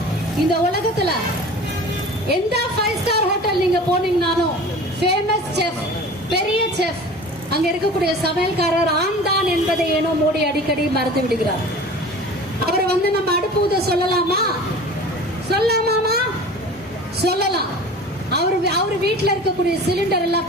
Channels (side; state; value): both; normal; correlation 0.40